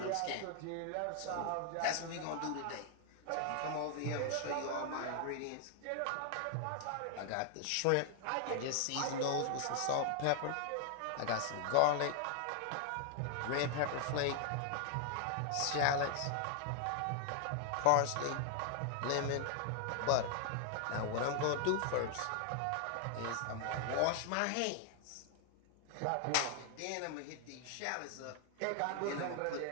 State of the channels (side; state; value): both; different; correlation 0.00